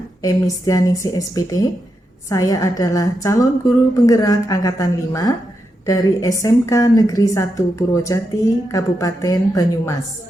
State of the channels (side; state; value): both; normal; correlation 0.86